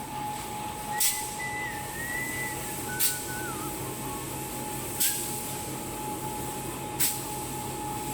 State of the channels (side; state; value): both; identical; correlation 1.00